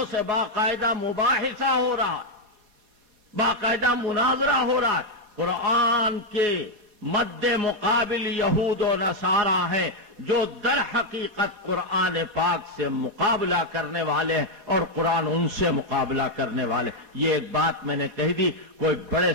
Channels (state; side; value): late; left; 4.2 ms